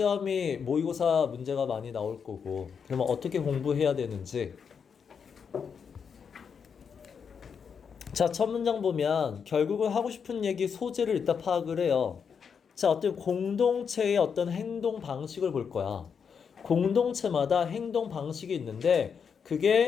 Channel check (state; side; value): quieter; right; 6.6 dB